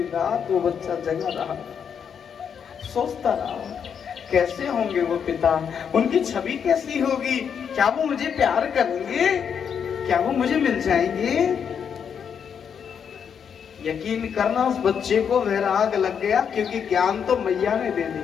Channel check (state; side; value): quieter; right; 7.4 dB